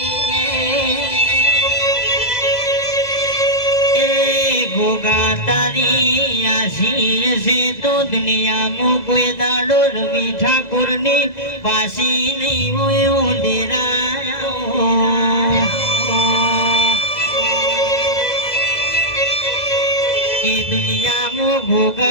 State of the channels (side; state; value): right; late; 2.0 ms